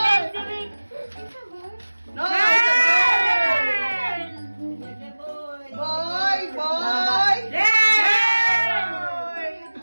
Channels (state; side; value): inverted; both; correlation -1.00